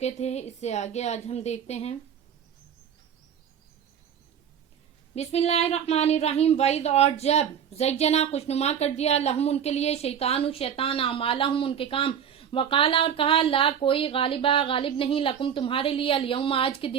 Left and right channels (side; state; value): left; quieter; 8.3 dB